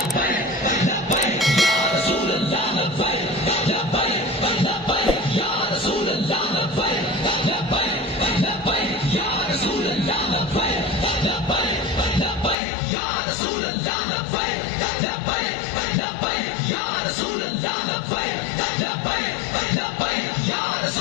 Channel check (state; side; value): drops out; right; at 12.6 s